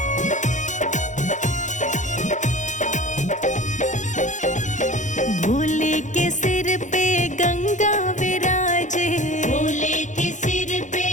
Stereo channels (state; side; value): late; right; 0.36 ms